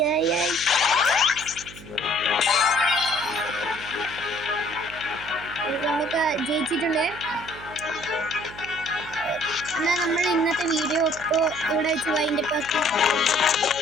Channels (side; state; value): right; noise; hum, 17 dB below the sound